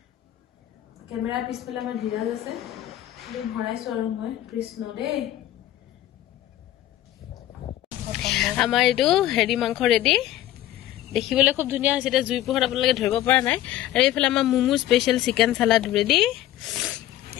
কেমেৰা পিছফালে আমাৰ ঢিলাল আছে ভৰাইছো আৰু মই কৃষ্ণ দেই আমাৰ এইটো হেৰি মাংস ৰেডি দেখিবলৈ খুব ধুনীয়া হৈছে এটা জুই পোহৰত আপোনালোকে ধৰিব পৰা নাই আৰু এইফালে আমাৰ Mumu special chicken salad ready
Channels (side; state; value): right; quieter; 13.6 dB